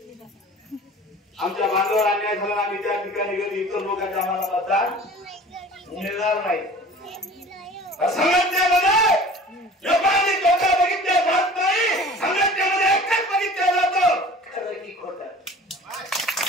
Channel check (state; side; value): normal; both; correlation 0.44